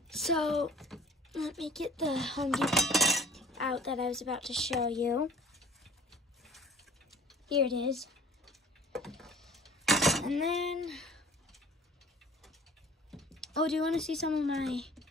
So let me get the Home Depot out that I was about to show you. Here it is. And then, oh, do you want to see some of my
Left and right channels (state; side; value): normal; both; correlation 0.48